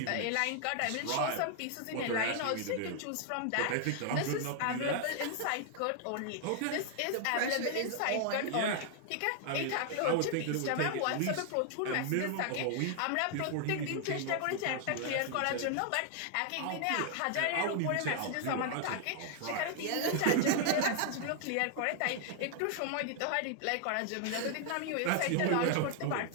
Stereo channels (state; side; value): different; both; correlation 0.00